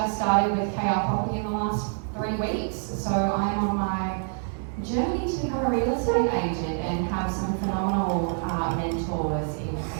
started with KR Property in the last 3 weeks, so I am on my journey to become a real estate agent and have some phenomenal mentors in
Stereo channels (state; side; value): silent; left; 58 dB below the other